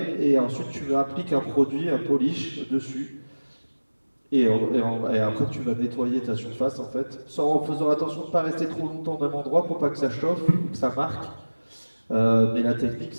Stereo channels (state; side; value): inverted; both; correlation -1.00